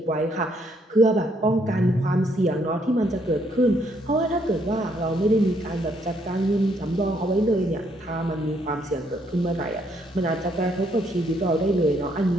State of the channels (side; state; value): both; normal; correlation 0.70